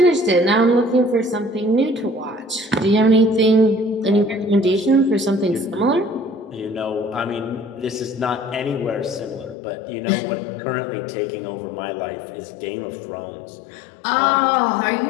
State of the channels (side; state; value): right; drops out; at 9.6 s